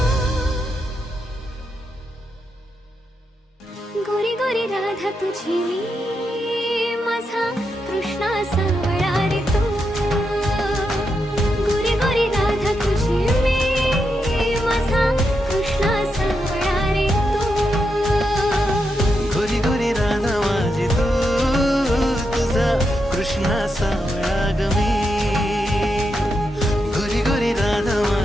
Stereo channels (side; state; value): both; normal; correlation 0.84